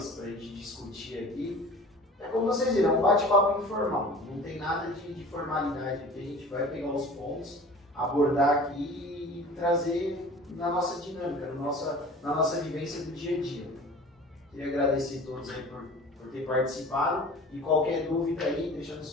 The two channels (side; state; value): both; normal; correlation 0.41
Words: pra gente discutir aqui. É como vocês viram, é um bate-papo informal, não tem nada de formalidade aqui, a gente vai pegar os pontos, abordar aqui e trazer na nossa dinâmica, na nossa vivência do dia a dia. Queria agradecer a todos aí por ter participado e qualquer dúvida aí, deixa